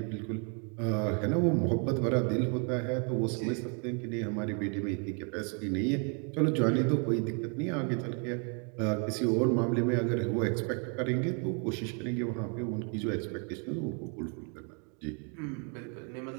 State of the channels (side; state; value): left; quieter; 38.6 dB